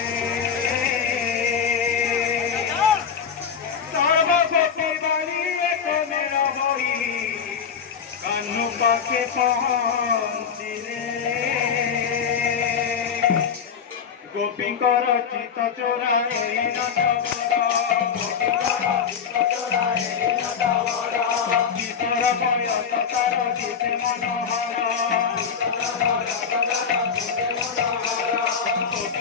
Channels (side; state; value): right; quieter; 6.9 dB